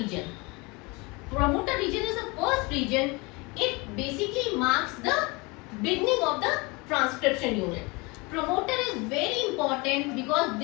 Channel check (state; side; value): quieter; right; 26.6 dB